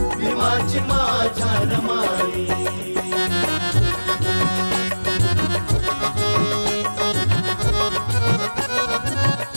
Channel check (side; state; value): both; inverted; correlation -1.00